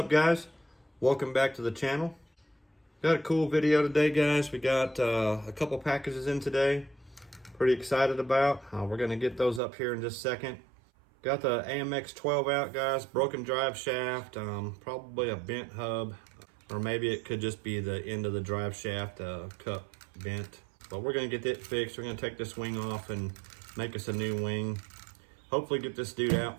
guys? Welcome back to the channel. Got a cool video today, guys. We got a couple packages in today. Pretty excited about. We're gonna get those up here in just a second. Got the AMX 12 out, guys. Broken drive shaft, probably a bent hub, or maybe it could just be the end of the drive shaft cup bent. But we're gonna get it fixed. We're gonna take this wing off and make us a new wing. Hopefully get this dude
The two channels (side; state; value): left; drops out; at 9.6 s